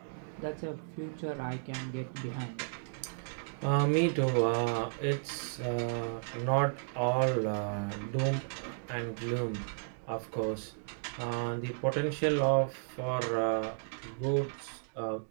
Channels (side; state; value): left; silent; digital silence